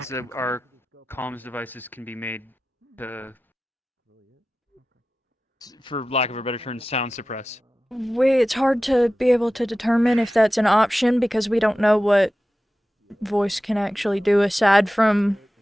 that our comms devices can be made to, for lack of a better term, sound suppress? It's hard to be able to determine if that's an option because we don't know what voice can actually do aside from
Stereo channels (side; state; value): both; normal; correlation 0.95